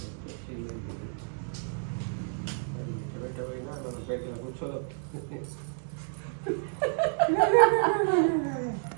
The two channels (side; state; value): left; silent; digital silence